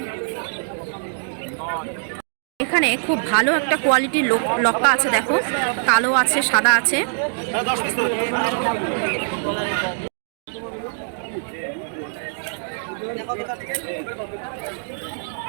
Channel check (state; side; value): silent; left; digital silence